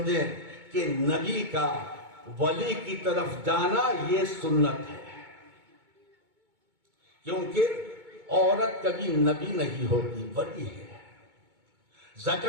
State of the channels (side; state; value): left; late; 2.2 ms